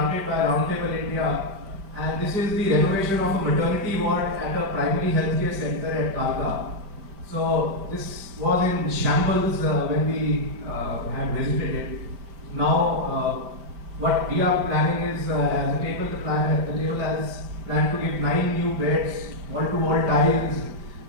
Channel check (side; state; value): left; late; 5.1 ms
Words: by Roundtable India, and this is the renovation of a maternity ward at a primary healthcare center at Kalka. So this was in shambles when we had visited it. Now, what we are planning is, as a table, the table has planned to give 9 new beds, wall-to-wall tiles,